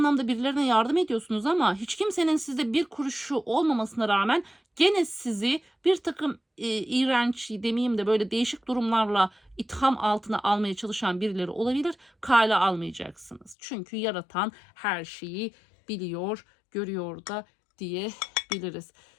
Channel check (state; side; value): drops out; right; at 13.6 s